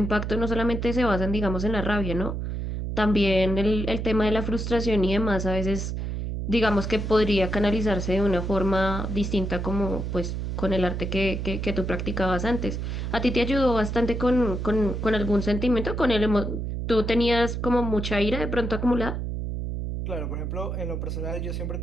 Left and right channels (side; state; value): right; noise; hum, 3 dB below the sound